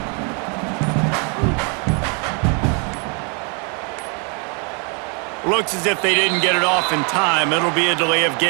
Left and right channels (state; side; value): quieter; left; 35.5 dB